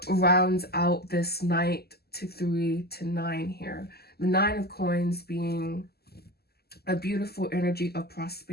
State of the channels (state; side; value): late; right; 0.46 ms